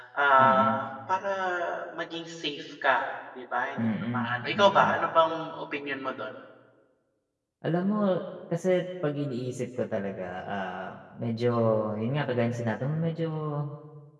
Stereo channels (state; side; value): identical; both; correlation 1.00